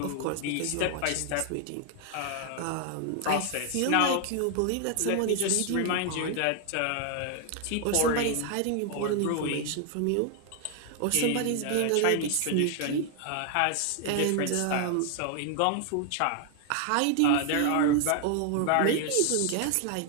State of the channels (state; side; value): different; both; correlation 0.00